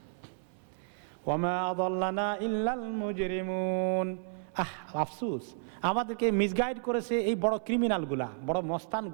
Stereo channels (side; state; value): left; silent; 56 dB below the other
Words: ওয়ামা আযাল্লানা ইল্লাল মুজরিমুন, আফসোস, আমাদেরকে মিসগাইড করেছে এই বড় ক্রিমিনালগুলা, বড়